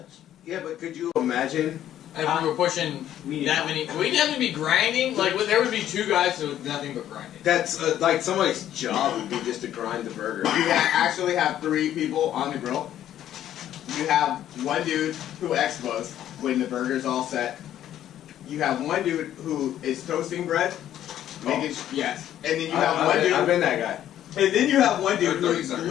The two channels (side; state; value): right; quieter; 11.6 dB